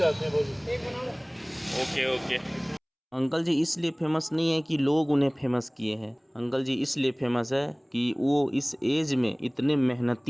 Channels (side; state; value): both; identical; correlation 1.00